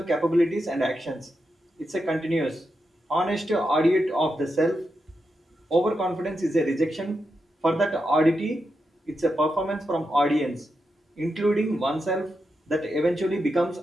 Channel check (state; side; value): normal; both; correlation 0.86